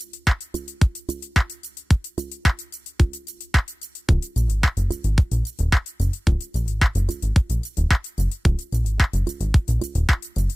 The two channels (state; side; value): normal; both; correlation 0.98